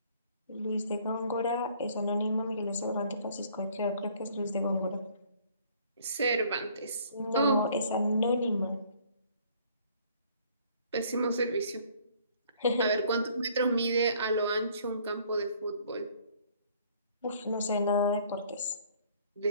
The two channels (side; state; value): both; inverted; correlation -0.58